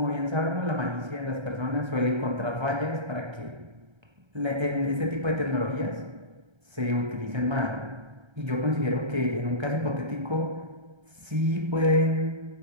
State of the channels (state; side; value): late; left; 1.3 ms